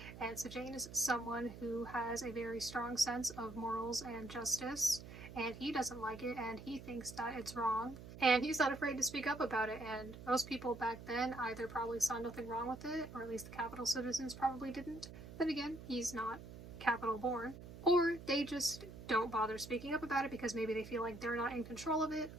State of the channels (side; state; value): right; noise; hum, 13 dB below the sound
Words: And Sejanus is someone who has a very strong sense of morals and justice, and he doesn't like it, and he thinks that it's wrong. And he's not afraid to speak up about it, and most people back then either probably saw nothing wrong with it, or at least the Capitol citizens probably didn't. Then again, he's not Capitol born. Or they just don't bother speaking up about it because maybe they feel like they're not in control of it,